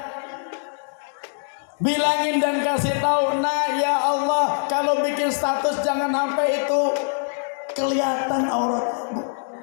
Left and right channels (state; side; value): silent; right; digital silence